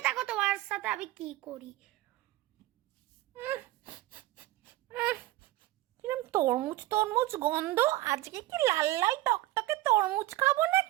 দেখো তোমার সাথে আমি কি করি। কিরম তরমুজ তরমুজ গন্ধ, আজকে কি লাল লাল টকটকে তরমুজ খাবো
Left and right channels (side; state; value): left; quieter; 16.9 dB